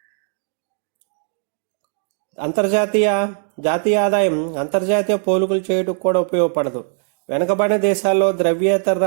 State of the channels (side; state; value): left; silent; digital silence